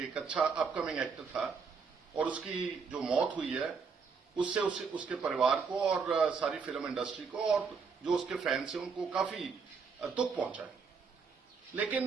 एक अच्छा अपकमिंग एक्टर था और उसकी जो मौत हुई है उससे उसके परिवार को और सारी फिल्म इंडस्ट्री को और जो उसके फैंस हैं उनको काफी दुख पहुंचा है।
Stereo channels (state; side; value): quieter; left; 5.4 dB